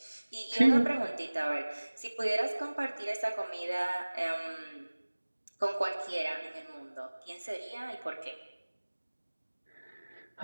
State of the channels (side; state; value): both; inverted; correlation -1.00